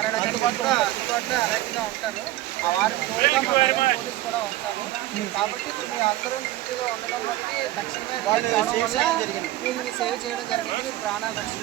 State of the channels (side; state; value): left; quieter; 15.6 dB